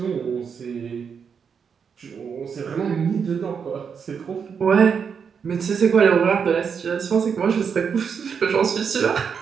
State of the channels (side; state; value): left; quieter; 6.6 dB